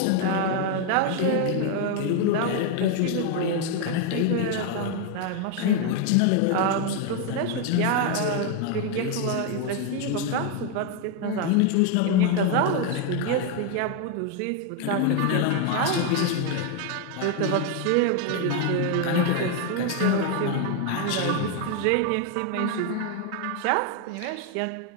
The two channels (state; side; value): different; both; correlation 0.01